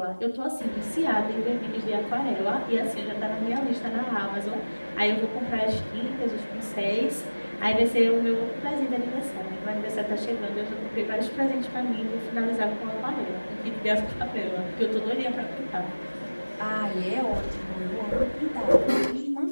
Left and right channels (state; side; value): inverted; both; correlation -1.00